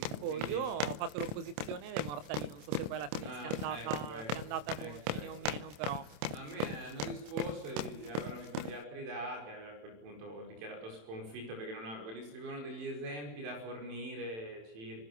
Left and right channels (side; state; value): left; late; 27 ms